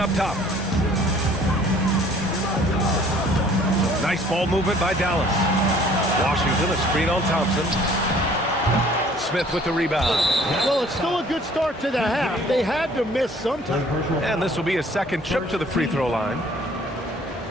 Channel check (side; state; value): both; normal; correlation 0.55